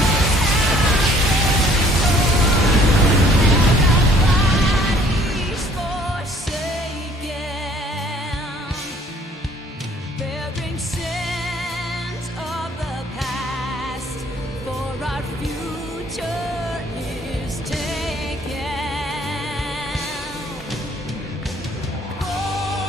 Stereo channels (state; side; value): normal; both; correlation 0.58